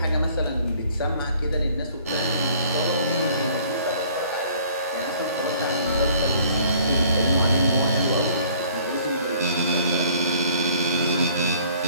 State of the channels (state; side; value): inverted; both; correlation -0.56